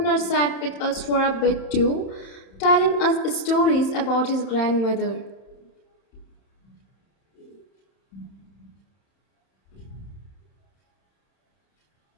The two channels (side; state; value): right; late; 31 ms